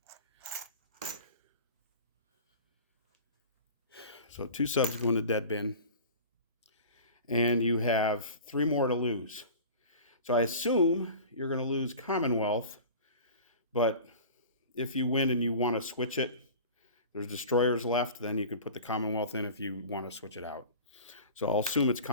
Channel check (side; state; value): both; inverted; correlation -0.38